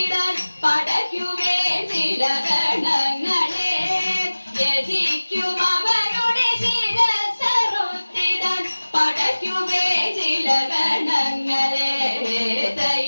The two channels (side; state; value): both; inverted; correlation -1.00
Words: പടയ്ക്കുമേ ചില ഗണങ്ങളെ യജിക്കും അവരുടെ ശിരസ്സറുത്തിടാൻ പടയ്ക്കുമേ ചില ഗണങ്ങളെ